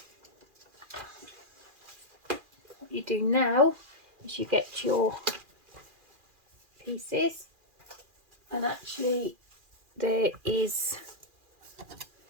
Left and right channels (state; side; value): late; left; 2.4 ms